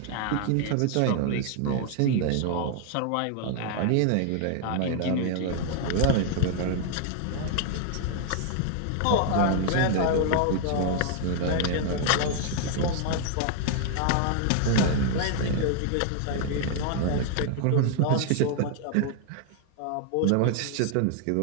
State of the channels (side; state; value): both; different; correlation 0.00